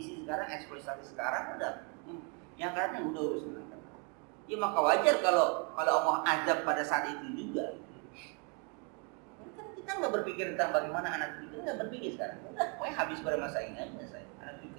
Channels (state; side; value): quieter; left; 34.8 dB